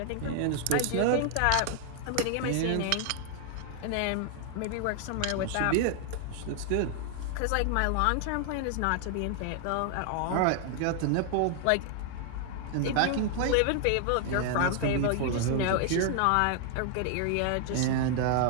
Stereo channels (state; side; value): different; both; correlation 0.00